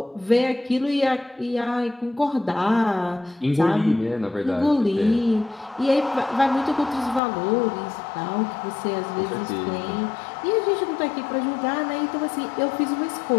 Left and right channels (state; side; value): drops out; right; at 7.2 s